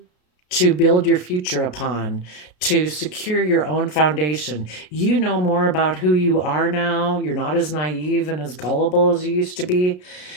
to build your future upon, to secure your own foundation. You know more about who you are now. You're not as naive and as gullible as you used to be.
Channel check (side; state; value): right; late; 33 ms